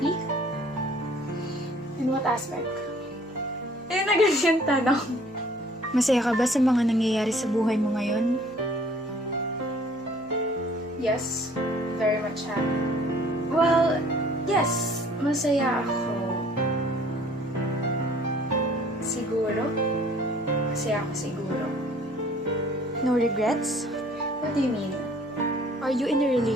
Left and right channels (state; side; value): noise; right; hum, 29 dB below the sound